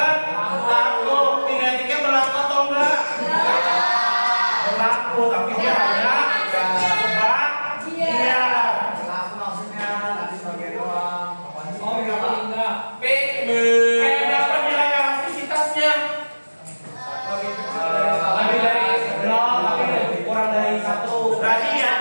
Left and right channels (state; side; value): inverted; both; correlation -1.00